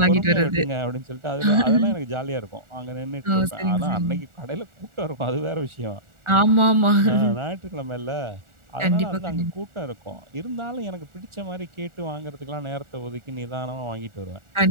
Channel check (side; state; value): left; late; 1.4 ms